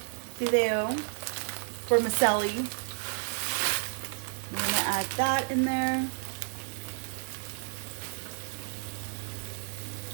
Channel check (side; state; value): left; silent; digital silence